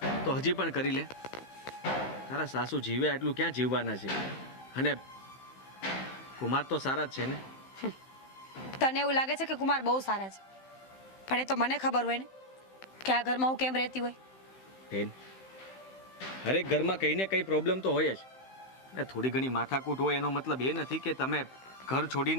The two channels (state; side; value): late; right; 15 ms